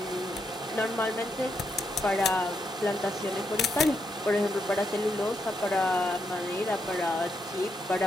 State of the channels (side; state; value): both; normal; correlation 0.80